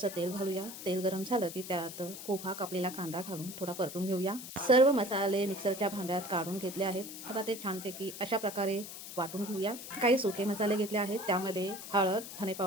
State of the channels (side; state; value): left; noise; hiss, 11 dB below the sound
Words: तेल घालूया। तेल गरम झालं की त्यात उभा कापलेला कांदा घालून थोडा परतून घेऊया। सर्व मसाले मिक्सरच्या भांड्यात काढून घेतले आहेत। आता ते छानपैकी अशा प्रकारे वाटून घेऊया। काही सुके मसाले घेतले आहेत, त्यामध्ये हळद, धने